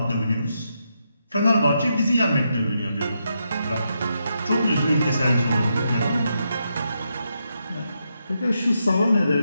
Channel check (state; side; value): inverted; both; correlation -0.82